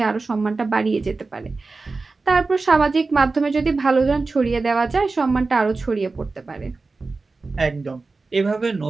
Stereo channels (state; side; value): quieter; left; 3.8 dB